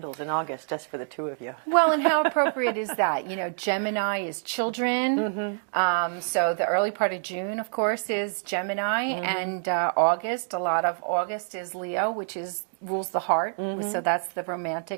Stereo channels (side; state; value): left; silent; digital silence